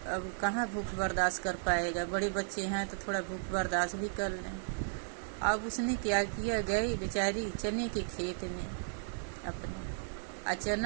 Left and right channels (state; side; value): silent; left; digital silence